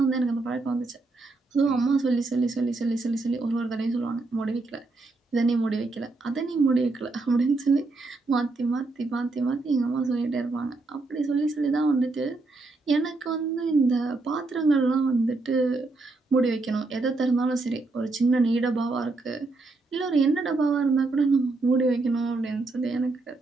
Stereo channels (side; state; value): left; quieter; 3.4 dB